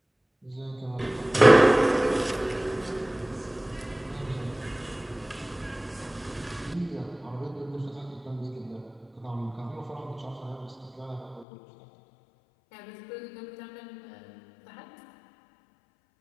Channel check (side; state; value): right; drops out; at 11.5 s